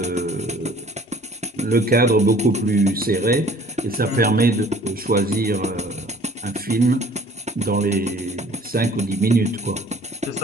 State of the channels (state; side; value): normal; both; correlation 0.52